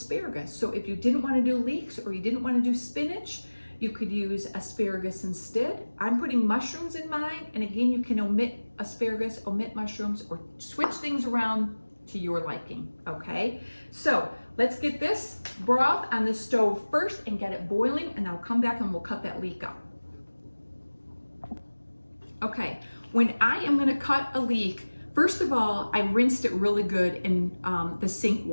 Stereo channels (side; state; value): both; inverted; correlation -1.00